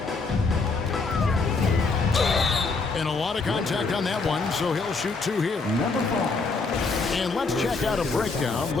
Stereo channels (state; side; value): quieter; right; 4.1 dB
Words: And a lot of contact on that one, so he'll shoot 2 here. And let's check out a breakdown